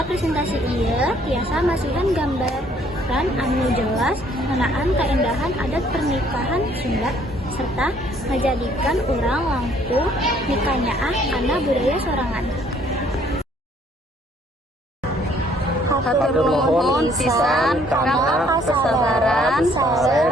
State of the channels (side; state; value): both; normal; correlation 0.62